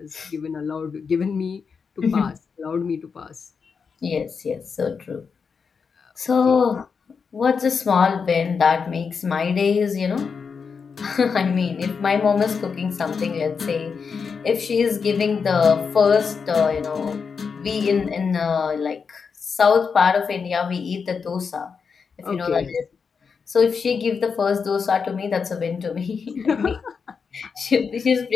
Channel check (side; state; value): right; quieter; 5.7 dB